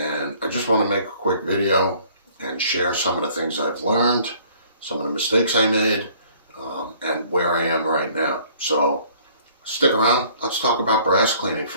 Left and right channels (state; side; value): inverted; both; correlation -0.57